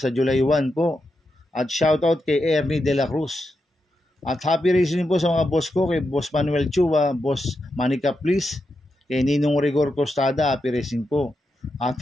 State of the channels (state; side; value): normal; both; correlation 0.86